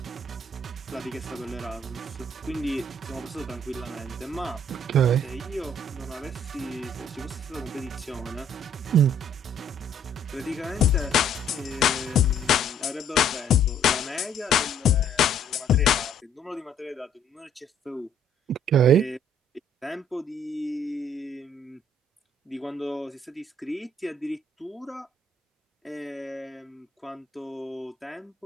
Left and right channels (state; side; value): normal; both; correlation 0.61